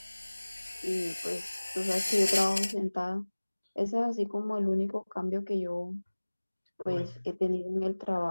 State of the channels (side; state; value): both; inverted; correlation -1.00